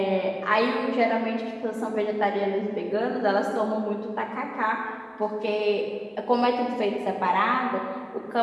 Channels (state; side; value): identical; both; correlation 1.00